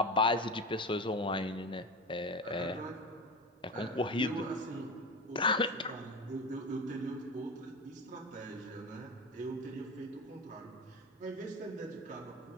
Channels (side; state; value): both; normal; correlation 0.26